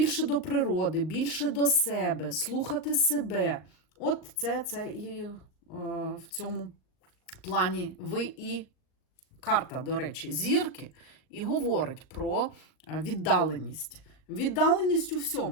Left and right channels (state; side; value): late; right; 39 ms